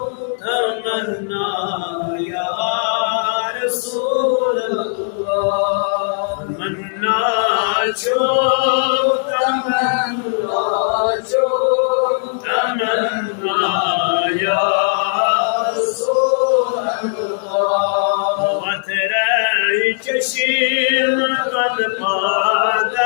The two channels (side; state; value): right; silent; digital silence